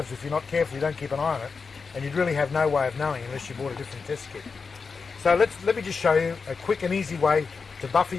if you're not careful, you don't keep an eye on it, and you'd really have no way of knowing unless you bought a different test kit. So let me just show you a quick and easy way to buffer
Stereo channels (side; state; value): right; quieter; 5.0 dB